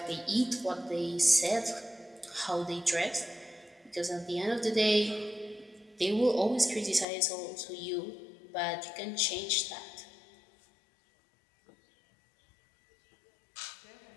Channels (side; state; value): right; drops out; at 7.1 s